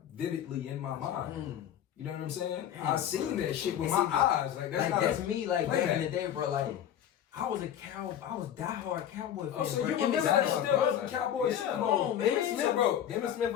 vividly in my mind. You know what I'm saying? I seen that shit with my eyes. Like that's not That's me, like back playback. in the day, bro. Like I was diehard Cowboy fan. Oh, so bro. you And remember this that was- still was a Cowboys Super Bowl? come on, man. Emmitt Smith, bro. Emmitt Smith,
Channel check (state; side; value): quieter; right; 10.2 dB